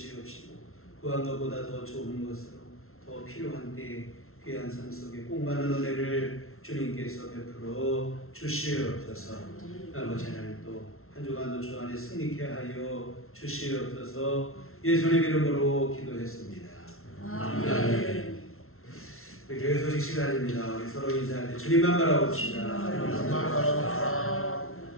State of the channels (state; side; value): late; right; 0.62 ms